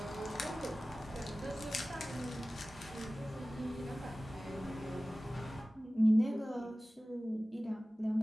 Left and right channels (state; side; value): normal; both; correlation 0.97